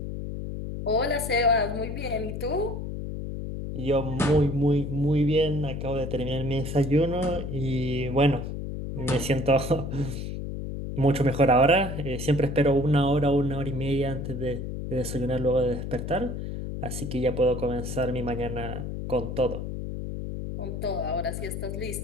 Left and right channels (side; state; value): left; noise; hum, 5 dB below the sound